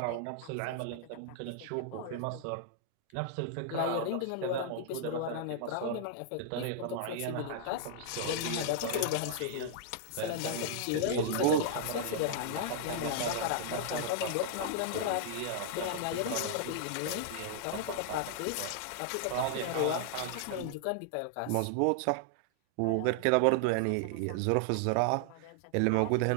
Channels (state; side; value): different; both; correlation -0.01